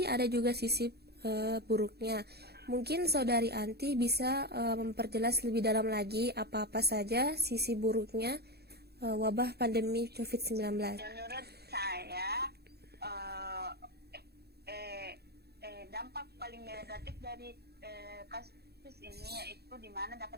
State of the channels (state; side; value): late; left; 0.47 ms